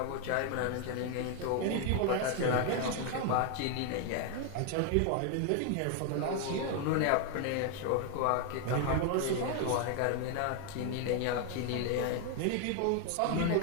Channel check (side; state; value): both; different; correlation 0.00